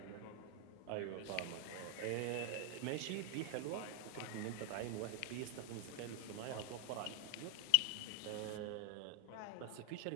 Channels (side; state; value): both; different; correlation 0.00